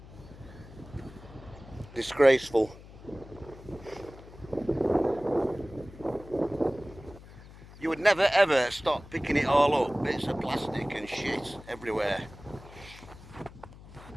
Disgraceful. You would never ever stop picking it all up. Bits of plastic and shit everywhere.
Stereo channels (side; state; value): left; noise; hum, 18 dB below the sound